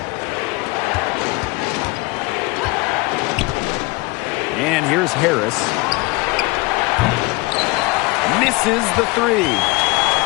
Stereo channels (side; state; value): right; quieter; 24.4 dB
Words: And here's Harris. Misses the 3.